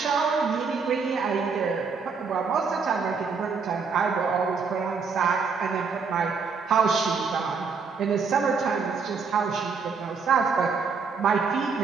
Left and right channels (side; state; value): left; quieter; 5.3 dB